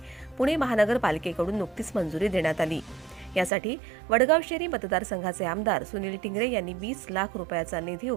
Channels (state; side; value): drops out; left; at 3.5 s